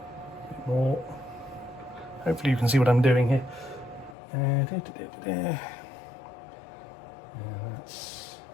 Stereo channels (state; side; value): drops out; right; at 4.2 s